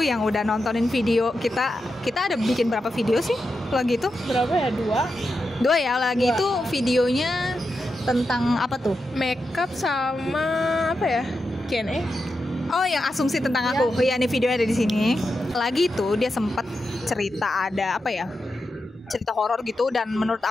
yang udah nontonin video kita. Kita ada bikin berapa video sih lagi itu? Berapa ya? Dua ya lagi itu videonya tentang apa tuh? Makeup sama apa ya? Q&A. Oh, yang asumsi tentang aku. Iya, nih videonya ada di sini. Lagi tuh dia sempat cerita ada apa ya? Cerita horor gitu dan menurut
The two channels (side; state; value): both; normal; correlation 0.88